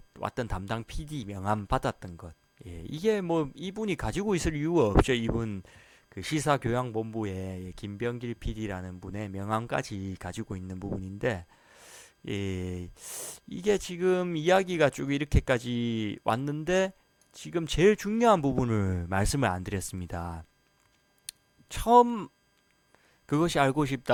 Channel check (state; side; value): identical; both; correlation 1.00